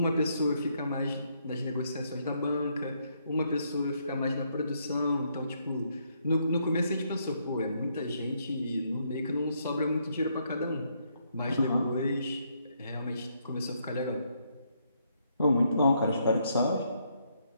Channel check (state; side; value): inverted; both; correlation -0.74